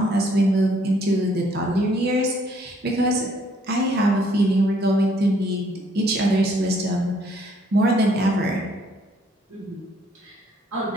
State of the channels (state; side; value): normal; both; correlation 0.65